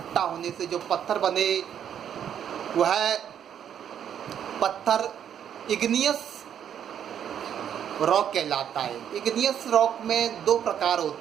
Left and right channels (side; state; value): left; quieter; 9.2 dB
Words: होने से जो पत्थर बने, वह पत्थर इग्नियस रॉक कहलाता है। इग्नियस रॉक में 2 प्रकार